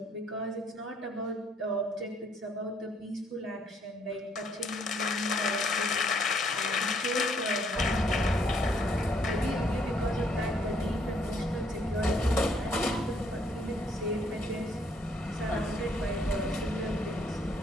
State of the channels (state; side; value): normal; both; correlation 0.68